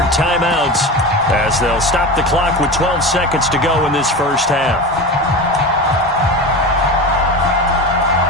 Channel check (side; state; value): both; normal; correlation 0.27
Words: timeouts as they'll stop the clock with 12 seconds to go in this first half.